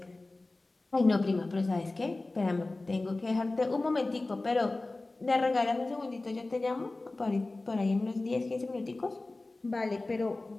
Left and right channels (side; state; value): right; quieter; 3.1 dB